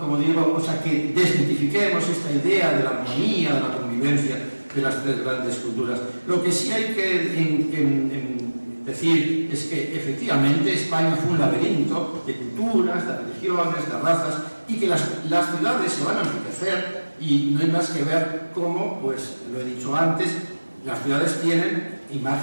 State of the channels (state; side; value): inverted; both; correlation -1.00